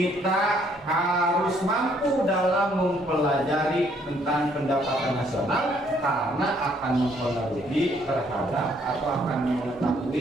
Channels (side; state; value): both; normal; correlation 0.66